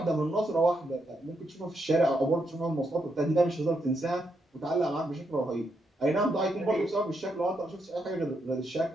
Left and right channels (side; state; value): both; normal; correlation 0.80